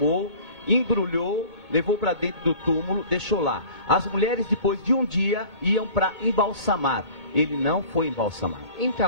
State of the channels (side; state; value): right; late; 2.2 ms